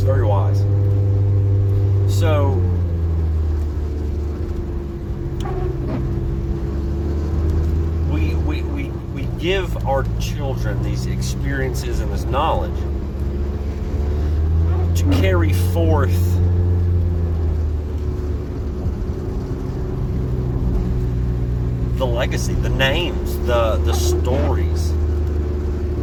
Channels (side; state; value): both; identical; correlation 1.00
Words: very wise. So, we give our children these experiences and this knowledge to carry forth the legacy, the names, the stories,